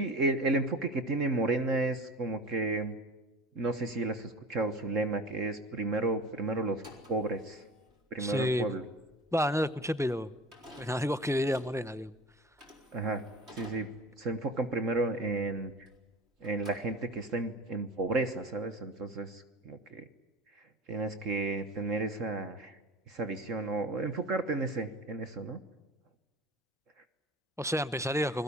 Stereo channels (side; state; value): both; normal; correlation 0.37